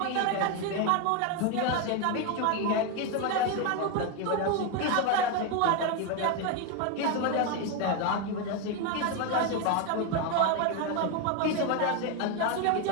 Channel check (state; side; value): different; both; correlation 0.02